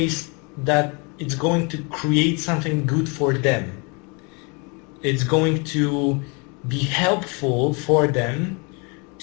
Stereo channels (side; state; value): right; quieter; 32.2 dB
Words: that it's going to create something good for them. It's going to be helpful for them